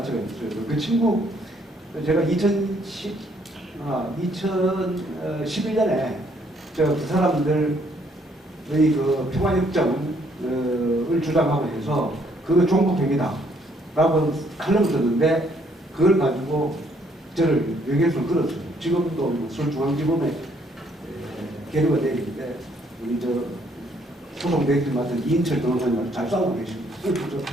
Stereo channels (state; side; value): normal; both; correlation 0.67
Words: 있어요. 그 친구 제가 2011년에 그 사람들의 그 평화협정을 주장하고 해서 그거 종북행위다라고 칼럼을 썼는데 그걸 가지고 저를 명예훼손을 걸었어요. 지금도 서울중앙지검에 계류가 되어 있는데 우리 소송 대행을 맡은 이인철 변호사님 잘 싸우고 계십니다. 그래서